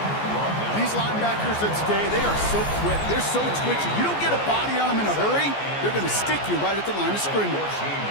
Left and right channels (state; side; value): late; right; 14 ms